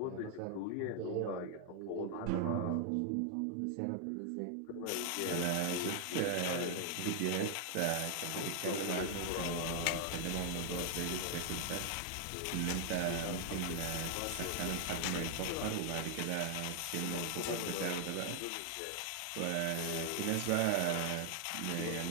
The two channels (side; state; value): both; different; correlation 0.00